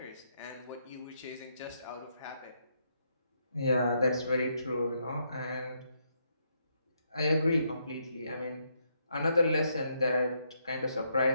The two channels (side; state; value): both; inverted; correlation -0.77